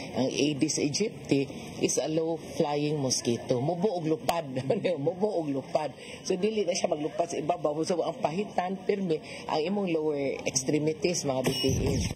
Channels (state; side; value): identical; both; correlation 1.00